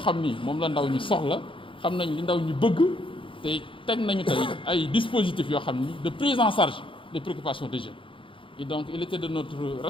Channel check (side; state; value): right; late; 0.25 ms